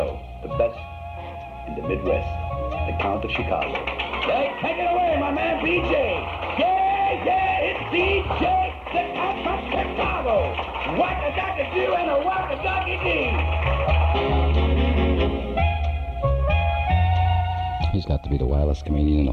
the best in the Midwest, the Count of Chicago. Hey, take it away, my man BJ. Yeah, it's DJ, the Count from Chicago. What a ducky do and a what a ducky do. He's got to be the wildest comedian in the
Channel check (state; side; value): identical; both; correlation 1.00